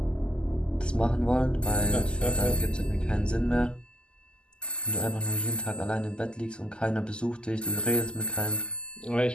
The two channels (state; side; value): late; right; 0.049 ms